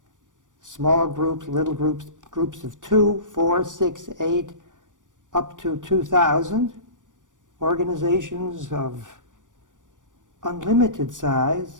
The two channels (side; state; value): left; late; 0.87 ms